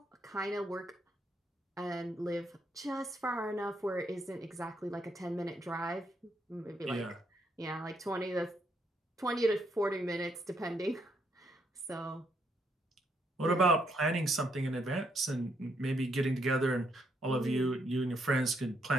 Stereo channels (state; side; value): normal; both; correlation 0.75